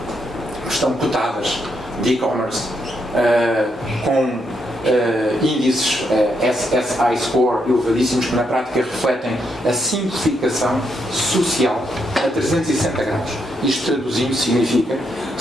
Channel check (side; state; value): both; normal; correlation 0.78